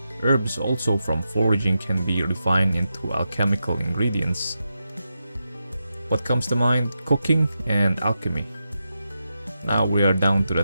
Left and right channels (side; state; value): both; inverted; correlation -0.88